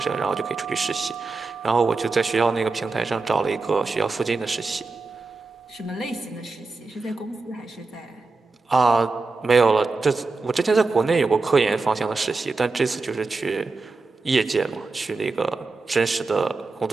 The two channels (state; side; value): quieter; left; 3.8 dB